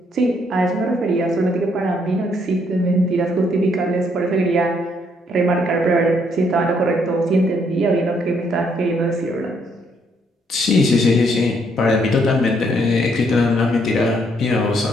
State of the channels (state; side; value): normal; both; correlation 0.71